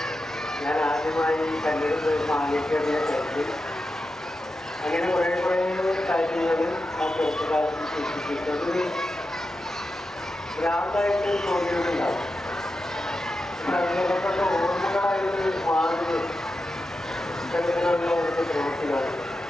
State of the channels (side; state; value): both; normal; correlation 0.90